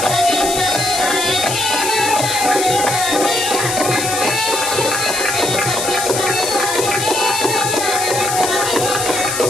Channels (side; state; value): left; noise; hiss, 3 dB below the sound